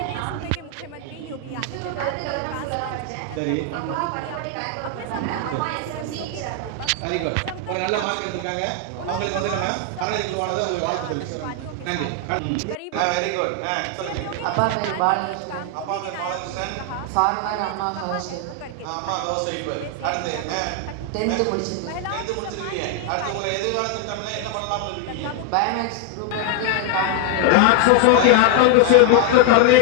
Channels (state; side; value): different; both; correlation 0.00